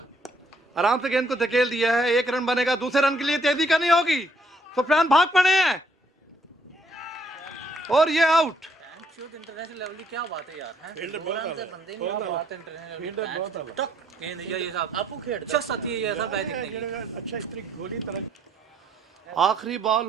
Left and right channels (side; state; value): both; normal; correlation 0.68